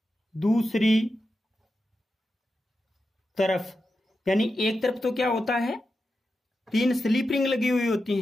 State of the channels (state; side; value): normal; both; correlation 0.89